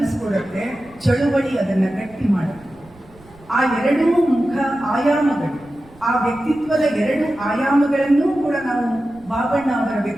ಚಳುವಳಿ, ಅದನ್ನ ಗಟ್ಟಿ ಮಾಡುತ್ತೆ. ಆ ಎರಡೂ ಮುಖ ಆಯಾಮಗಳು, ಆ ವ್ಯಕ್ತಿತ್ವದ ಎರಡು ಆಯಾಮಗಳನ್ನೂ ಕೂಡ ನಾವು ಬಾಬಣ್ಣ ಅವರ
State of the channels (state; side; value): noise; right; rumble, 25 dB below the sound